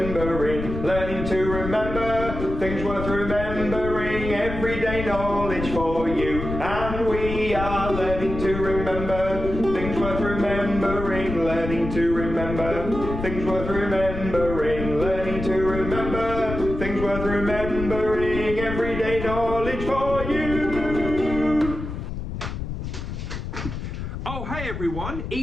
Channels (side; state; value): left; noise; rumble, 6 dB below the sound